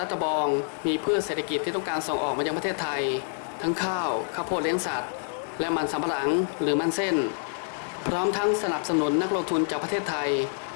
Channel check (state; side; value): silent; right; digital silence